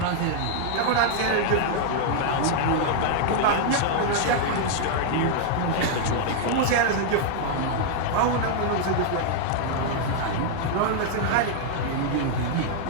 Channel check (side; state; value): both; different; correlation -0.01